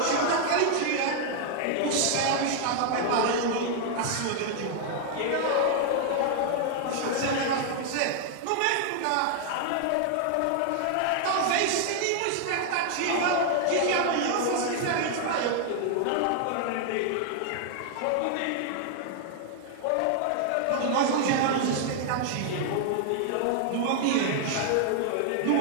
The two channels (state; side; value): different; both; correlation 0.00